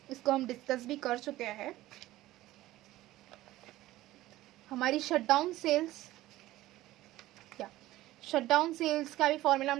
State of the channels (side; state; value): left; quieter; 16.2 dB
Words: इसको हम डिस्कस भी कर चुके हैं। हमारी शटडाउन सेल्स, क्या शटडाउन सेल्स का भी फॉर्मूला